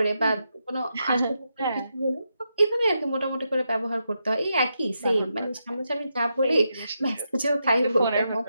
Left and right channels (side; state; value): both; inverted; correlation -0.85